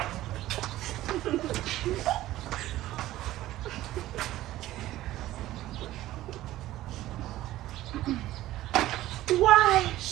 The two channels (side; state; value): left; quieter; 15.3 dB